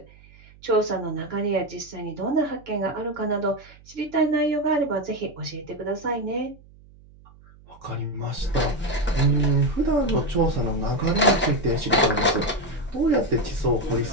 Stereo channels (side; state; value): right; noise; hum, 24 dB below the sound